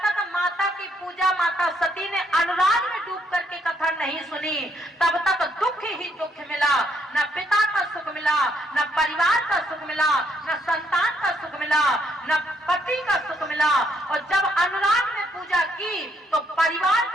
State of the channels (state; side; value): normal; both; correlation 0.72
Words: तक माता की पूजा माता सती ने अनुराग में डूब करके कथा नहीं सुनी तब तक दुख ही दुख मिला। न पिता का सुख मिला, न परिवार का सुख मिला, न संतान का सुख मिला, न पति का सुख मिला। और जब अनुराग में पूजा की तो परिवार